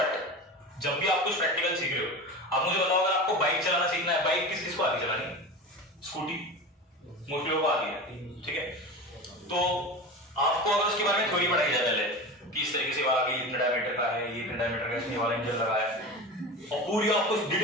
जब भी आप कुछ प्रैक्टिकल सीख रहे हो, आप मुझे बताओ अगर आपको बाइक चलाना सीखना है, बाइक किस किस को आती है चलानी? स्कूटी मोस्टली लोगों को आती है, ठीक है? तो आपको अगर उसके बारे में थ्योरी पढ़ाई जाए पहले कि इस तरीके से वाला भी इतने डायमीटर का है, ये इतने डायमीटर का इसमें वाला इंजन लगा है, और पूरी आपको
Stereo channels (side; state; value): both; normal; correlation 0.29